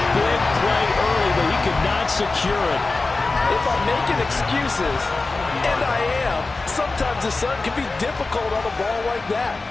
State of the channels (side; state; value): right; quieter; 3.6 dB